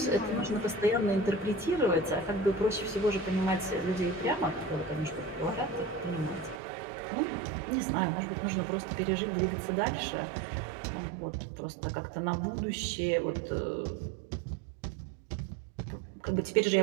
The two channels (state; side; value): drops out; left; at 6.6 s